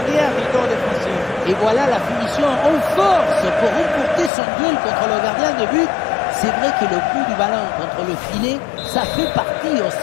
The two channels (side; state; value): right; drops out; at 4.3 s